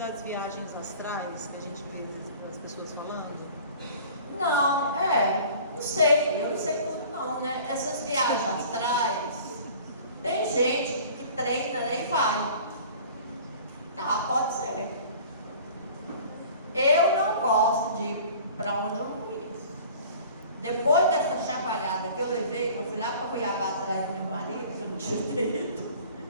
viagens astrais que a gente vê as pessoas falando? Não, não sei, eu não sei tudo não, né? Essas viagens astrais, tem gente que treina, né, e vai. Tá, pode ser. Eu não gosto de ir para onde eu não conheço. Depois dessa chacoalhada que eu levei, que eu fui lá para Cuiabá atrás do meu marido, que eu não tinha ido.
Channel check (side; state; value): both; inverted; correlation -0.46